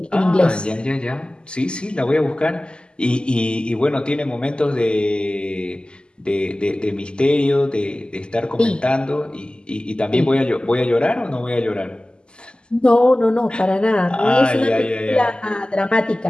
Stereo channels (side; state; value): right; late; 0.049 ms